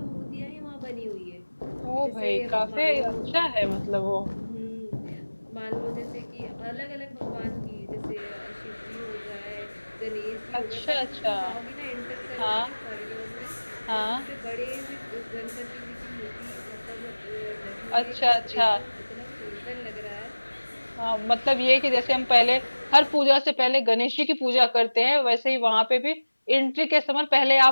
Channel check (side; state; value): both; inverted; correlation -1.00